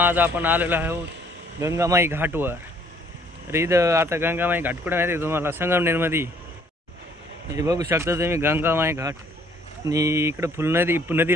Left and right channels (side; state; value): both; normal; correlation 0.61